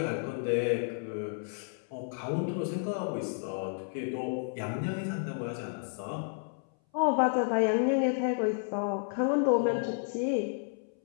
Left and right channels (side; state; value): right; silent; 57 dB below the other